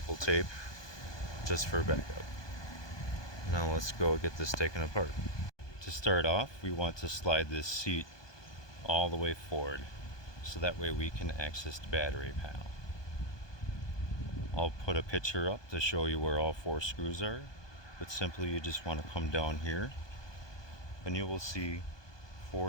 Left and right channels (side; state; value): right; late; 1.2 ms